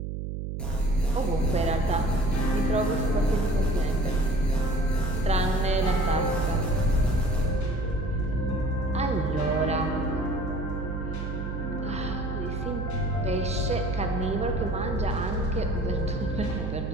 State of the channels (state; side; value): noise; right; hum, 4 dB below the sound